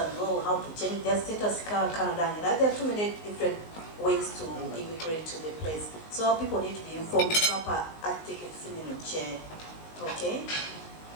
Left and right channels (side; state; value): right; late; 19 ms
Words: know how to change their status Canada, and there are too many different ways to immigrate to the place. So our people need to be informed proper tickets in the chair. Okay?